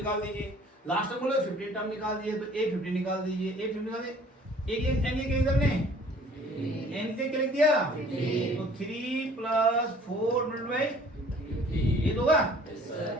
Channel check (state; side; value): normal; both; correlation 0.53